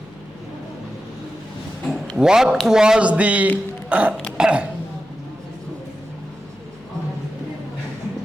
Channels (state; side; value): noise; left; hum, 26 dB below the sound